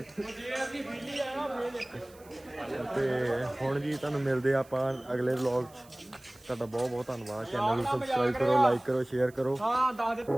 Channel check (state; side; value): noise; right; hiss, 26 dB below the sound